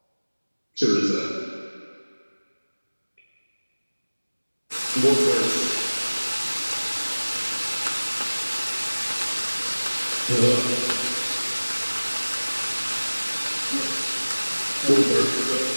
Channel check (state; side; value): inverted; both; correlation -1.00